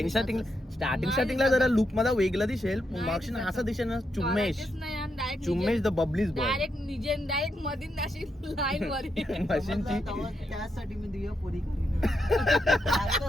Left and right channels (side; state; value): both; normal; correlation 0.82